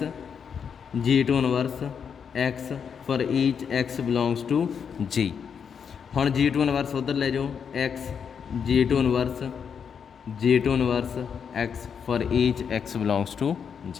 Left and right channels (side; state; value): right; quieter; 7.0 dB